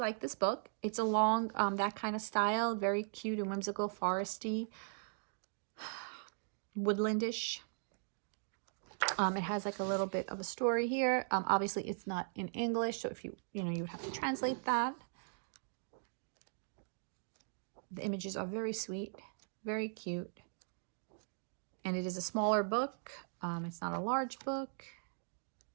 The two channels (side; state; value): left; silent; digital silence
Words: this book. It's along that kind of style, very cute and whimsical, foresty, woodlandish. It has like a little bit of a story here. Obviously it's not in English, so if you have to translate that. The images are very sweet, very cute, and it is a smaller book. It's not a large book,